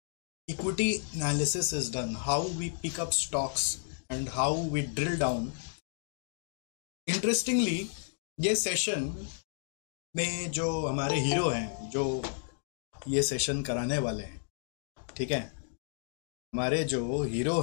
equity analysis is done, how we pick up stocks, and how we drill down. Interestingly, ये session में जो हमारे hero हैं, जो ये session कराने वाले हैं, ठीक है, हमारे जो हीरो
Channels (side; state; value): right; silent; digital silence